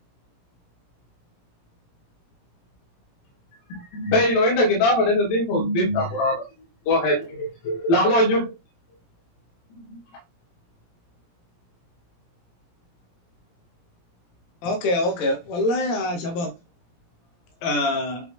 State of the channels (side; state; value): right; late; 17 ms